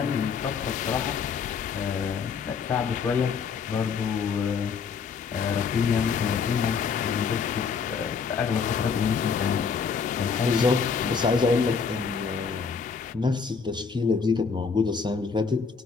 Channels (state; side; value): quieter; right; 5.7 dB